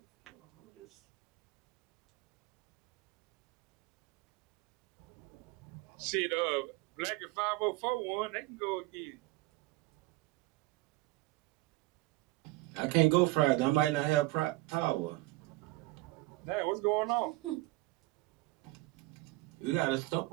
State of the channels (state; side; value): quieter; left; 20.4 dB